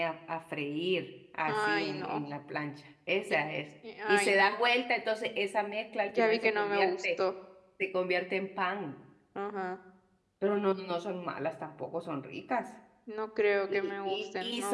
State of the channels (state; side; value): identical; both; correlation 1.00